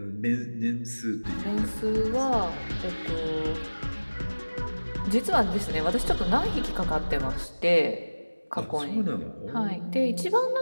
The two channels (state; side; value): inverted; both; correlation -1.00